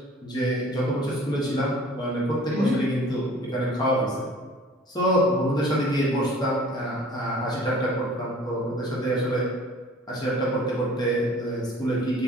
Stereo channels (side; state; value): both; normal; correlation 0.49